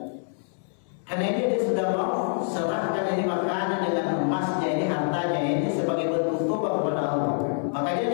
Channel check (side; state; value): right; silent; 61 dB below the other